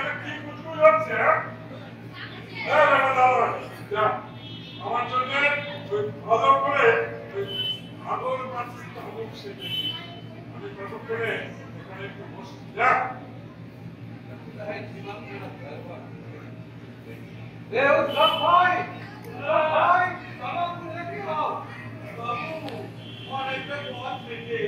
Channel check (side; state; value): both; identical; correlation 1.00